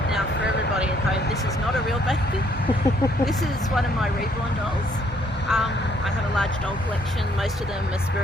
Now, for everybody at home, this is not a real baby. This is one of my reborn dolls. I have a large doll collection. Most of them are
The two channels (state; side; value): normal; both; correlation 0.66